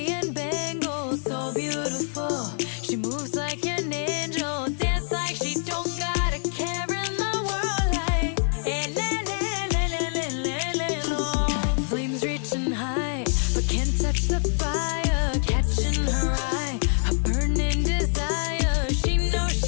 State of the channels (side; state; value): right; silent; 61 dB below the other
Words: and bangles, so beautiful. She moves like an angel, dance like she don't got a care in the world. Like, eh, le, le, le, le, le, le, le, lo. Flames reaching high, but can't touch the fire, catching her eye, a burning desire. She knows